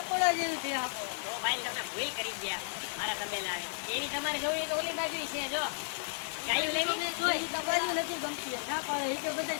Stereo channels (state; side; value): silent; right; digital silence